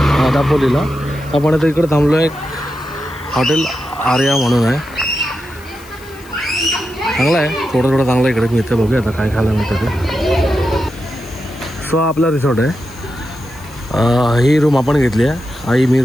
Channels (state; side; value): noise; left; hiss, 23 dB below the sound